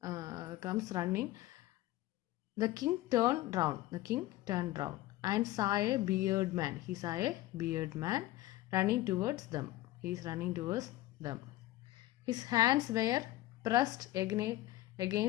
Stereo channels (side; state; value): right; quieter; 16.3 dB